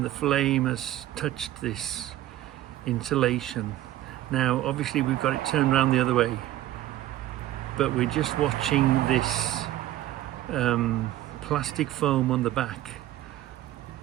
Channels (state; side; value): quieter; left; 14.2 dB